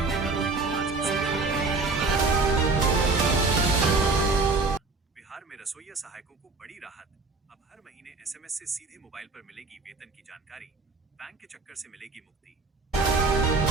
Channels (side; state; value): left; quieter; 3.9 dB